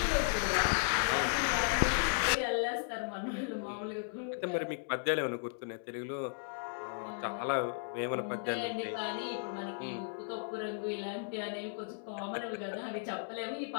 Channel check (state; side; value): silent; right; digital silence